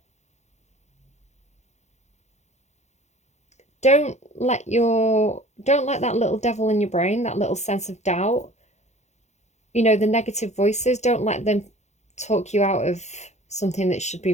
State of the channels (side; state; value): right; late; 0.33 ms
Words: Don't let that little devil in your brain, that little sense of doubt, you know, the negative voices, don't let them talk you out of something that should be